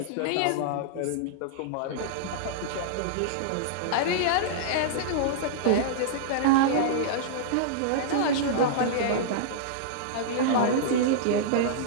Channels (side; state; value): both; different; correlation -0.02